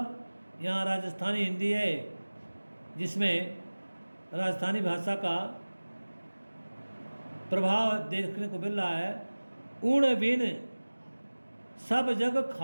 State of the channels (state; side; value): inverted; both; correlation -1.00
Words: यहाँ राजस्थानी हिंदी है जिसमें राजस्थानी भाषा का प्रभाव देखने को मिल रहा है। उण बिन सब जग